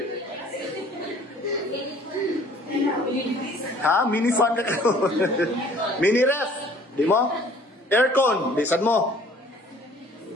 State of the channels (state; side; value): normal; both; correlation 0.54